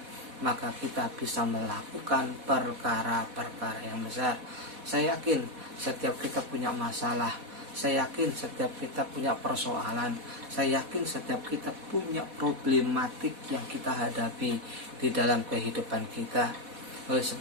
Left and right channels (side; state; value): left; late; 4.1 ms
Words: maka kita bisa melakukan perkara-perkara yang besar. Saya yakin setiap kita punya masalah. Saya yakin setiap kita punya persoalan. Saya yakin setiap kita punya problematik yang kita hadapi di dalam kehidupan kita. Oleh